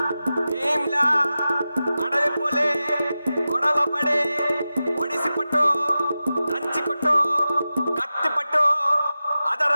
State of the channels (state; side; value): inverted; both; correlation -0.94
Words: భీమ్లా. అడవి పులే గొడవ పడి